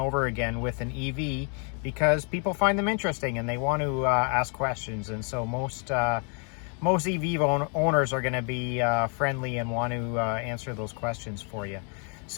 again with an EV, because people find them interesting and they want to ask questions. And so most EV owners are going to be friendly and want to answer those questions for you.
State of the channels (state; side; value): quieter; right; 39.4 dB